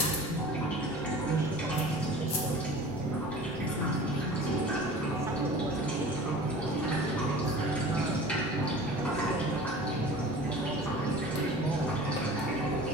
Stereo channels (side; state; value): left; noise; rumble, 21 dB below the sound